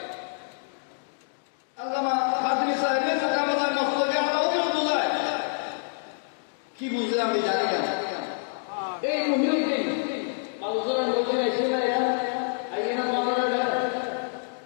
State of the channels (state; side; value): silent; right; digital silence